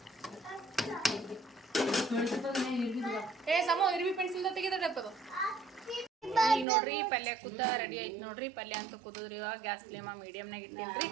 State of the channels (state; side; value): drops out; left; at 6.7 s